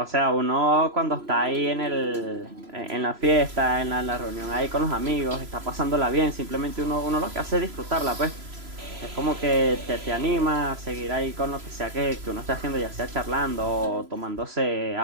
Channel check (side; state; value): left; late; 3.0 ms